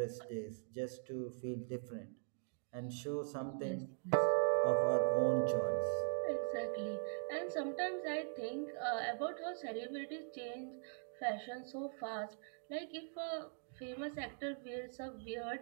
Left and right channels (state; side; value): silent; left; digital silence